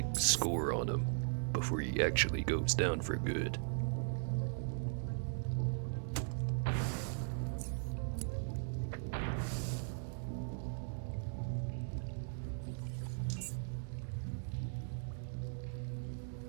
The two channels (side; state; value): left; silent; digital silence